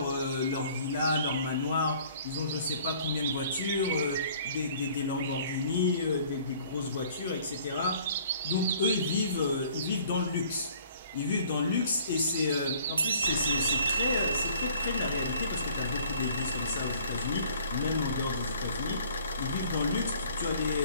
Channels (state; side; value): inverted; both; correlation -0.54